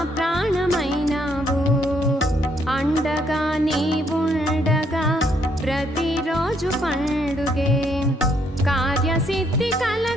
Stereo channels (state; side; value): normal; both; correlation 0.71